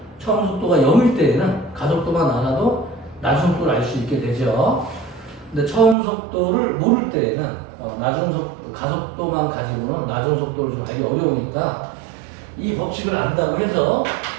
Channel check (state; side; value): drops out; left; at 6.0 s